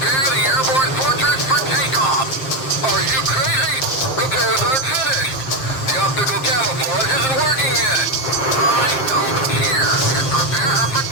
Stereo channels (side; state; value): right; late; 7.6 ms